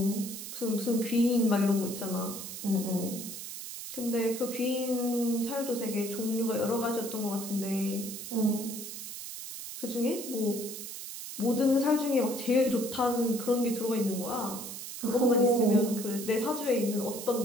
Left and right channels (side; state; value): right; noise; hiss, 9 dB below the sound